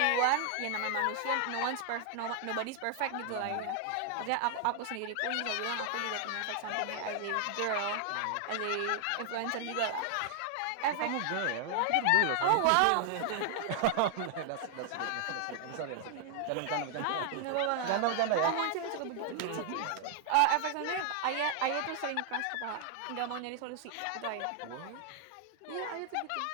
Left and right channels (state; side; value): different; both; correlation 0.00